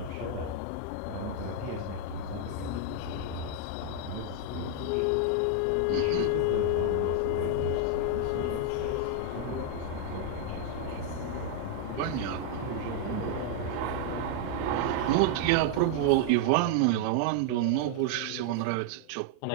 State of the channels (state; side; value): different; both; correlation 0.00